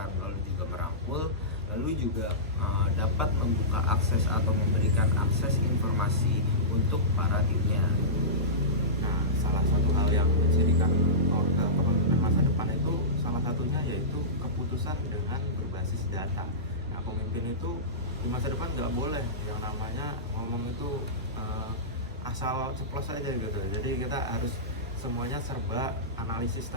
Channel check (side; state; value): both; normal; correlation -0.18